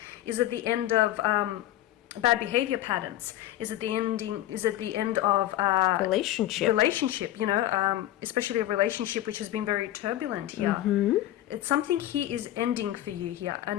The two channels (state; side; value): quieter; right; 14.0 dB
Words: Is it the end of bad behavior patterns? Is it the end of relationship, you know, especially a relationship which has been very turbulent here? It's something here is ending for you here,